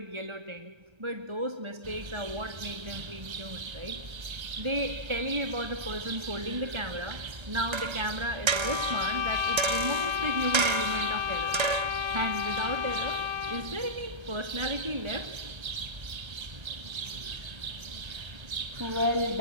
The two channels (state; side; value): late; left; 1.3 ms